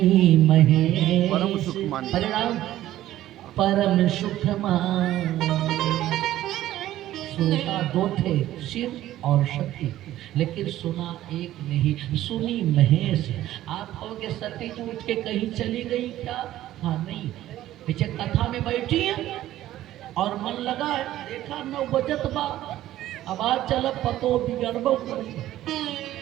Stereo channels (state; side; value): quieter; left; 13.9 dB